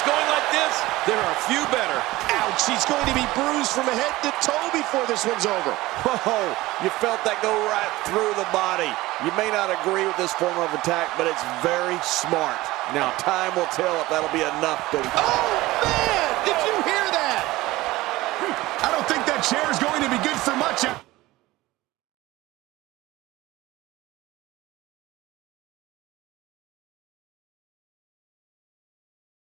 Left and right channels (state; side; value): quieter; left; 18.6 dB